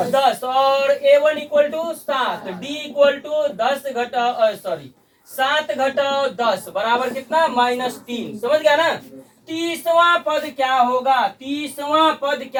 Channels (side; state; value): both; identical; correlation 1.00